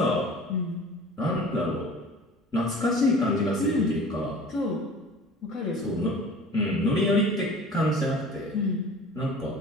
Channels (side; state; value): both; normal; correlation 0.43